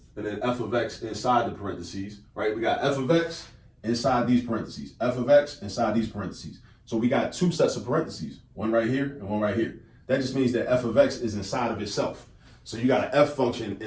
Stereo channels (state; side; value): identical; both; correlation 1.00